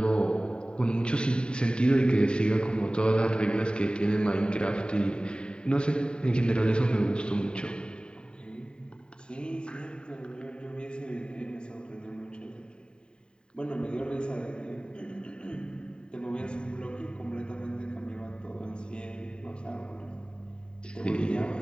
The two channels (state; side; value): late; right; 0.050 ms